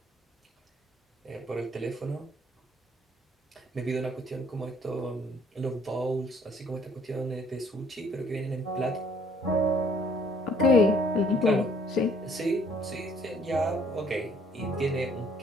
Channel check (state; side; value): normal; both; correlation 0.61